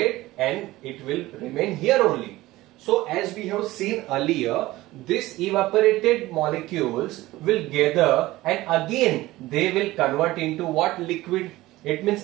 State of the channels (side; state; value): left; quieter; 17.8 dB